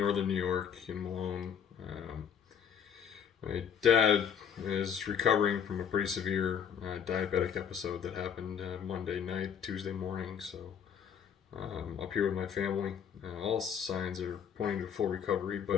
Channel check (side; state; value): right; quieter; 7.9 dB